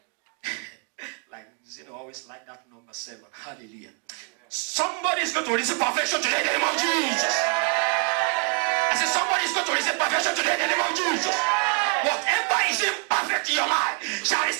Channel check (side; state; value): left; quieter; 30.6 dB